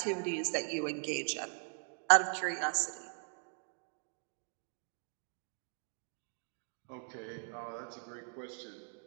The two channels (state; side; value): silent; left; 52 dB below the other